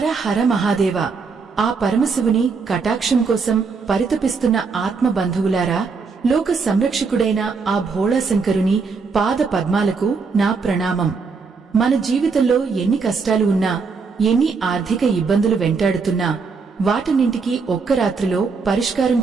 హర మహాదేవ. ఆ పరమశివుని కటాక్షం కోసం పరితపిస్తున్న ఆత్మబంధువులారా, లోక సంరక్షకుడైన ఆ భోళాశంకరుని పాద పద్మాలకు నా ప్రణామం. మన జీవితంలో ఎన్ని కష్టాలు ఉన్నా, ఎన్ని ఆర్థిక ఇబ్బందులు వెంటాడుతున్నా, వాటన్నింటికీ ఒక్క రాత్రిలో పరిష్కారం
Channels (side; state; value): left; quieter; 4.9 dB